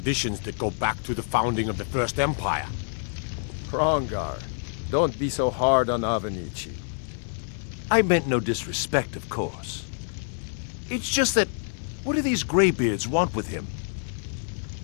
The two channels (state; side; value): silent; right; 60 dB below the other